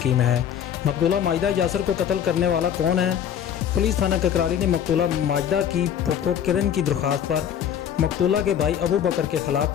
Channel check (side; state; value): right; quieter; 9.2 dB